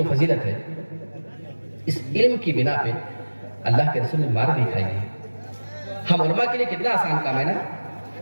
فضیلت ہے، اس علم کی بنا پہ اللہ کے رسول نے مار بھی کھائی ہے. ہم علماء کے لیے کتنا آسان کام ہے نا.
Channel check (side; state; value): both; inverted; correlation -1.00